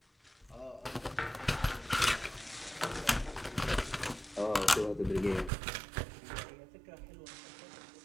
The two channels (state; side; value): drops out; left; at 5.5 s